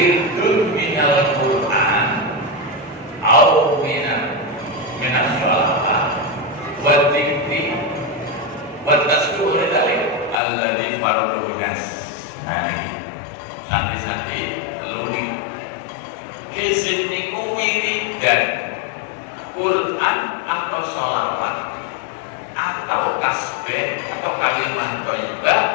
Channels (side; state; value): right; drops out; at 10.4 s